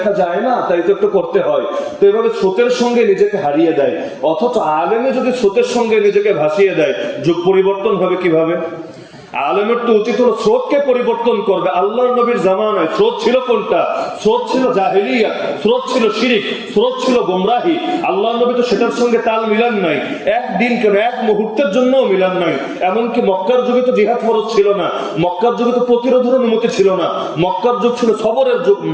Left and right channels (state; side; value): identical; both; correlation 1.00